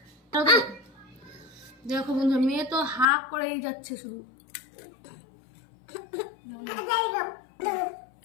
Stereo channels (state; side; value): drops out; right; at 3.1 s